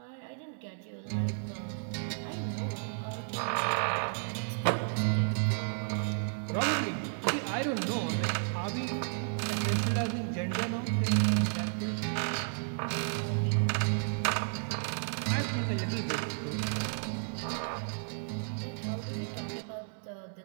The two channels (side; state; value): left; silent; 56 dB below the other